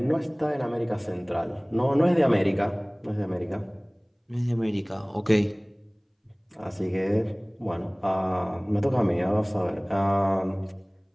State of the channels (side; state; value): both; identical; correlation 1.00